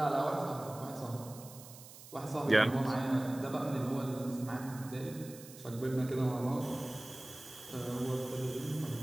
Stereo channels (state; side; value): noise; right; hiss, 17 dB below the sound